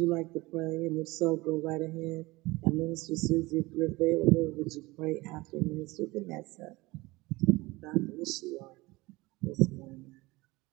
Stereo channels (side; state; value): left; quieter; 21.5 dB